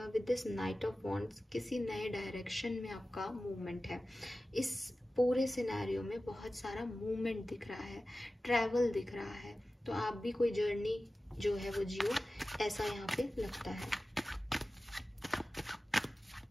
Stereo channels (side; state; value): both; normal; correlation 0.95